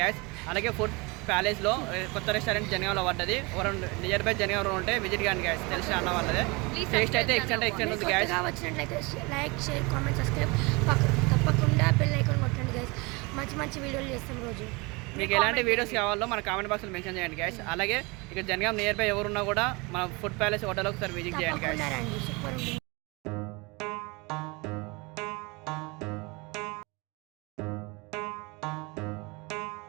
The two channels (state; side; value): quieter; left; 26.8 dB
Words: అలాగే ఫుడ్ ప్యాలెస్లో కొత్త రెస్టారెంట్ జనగాంలో పడ్డది. ఎవరు నియర్ బై జనగాంలో ఉంటే విజిట్ కానీ గ్యాస్, తెలిసిన అన్న వాళ్ళదే. టేస్ట్ అయితే ఎక్స్టెంట్ ఉంది గ్యాస్. వచ్చినట్లయితే లైక్, షేర్, కామెంట్, సబ్స్క్రైబ్ తప్పకుండా బెల్ ఐకాన్ కొట్టండి గ్యాస్. మంచి మంచి వీడియోలు చేస్తాం రోజు. మీకు ఎలాంటి వీడియోస్ కావాలో మన కామెంట్ బాక్స్లో మెన్షన్ చేయండి గ్యాస్. అలాగే ఇక్కడ జనగాం నియర్ బై ఎవరున్నా కూడా మన ఫుడ్ ప్యాలెస్ హోటల్ ఒకసారి విజిట్ చేయండి గ్యాస్. సూపర్ ఉంటుంది.